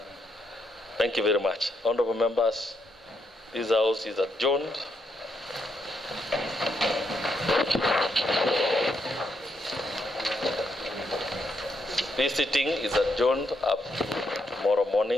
Thank you very much. Honourable members, this House is adjourned. This sitting is adjourned up to tomorrow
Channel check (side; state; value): both; normal; correlation 0.78